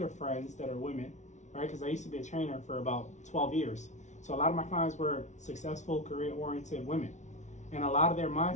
friends that are women, right? Because I used to be a trainer for about 12 years. So a lot of my clients were successful, career-oriented women. And a lot of their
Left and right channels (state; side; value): late; right; 0.34 ms